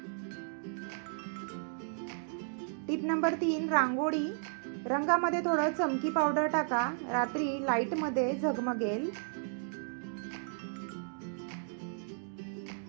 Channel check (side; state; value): left; silent; digital silence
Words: टिप नंबर 3, रांगोळी, रंगामध्ये थोडं चमकी पावडर टाका, रात्री लाईट मध्ये झगमगेल।